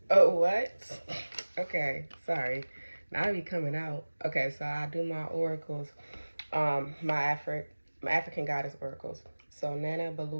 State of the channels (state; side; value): inverted; both; correlation -1.00